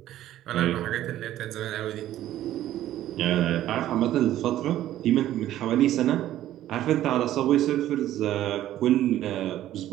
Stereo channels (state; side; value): quieter; left; 13.1 dB